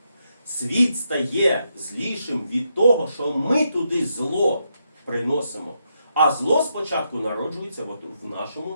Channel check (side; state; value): both; inverted; correlation -0.81